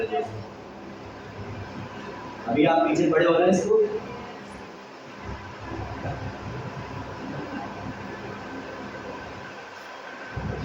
अभी आप पीछे पड़े हो रहे हैं इसको,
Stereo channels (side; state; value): both; identical; correlation 1.00